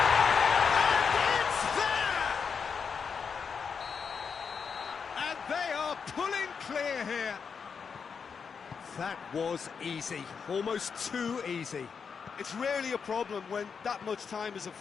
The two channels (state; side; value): quieter; right; 6.1 dB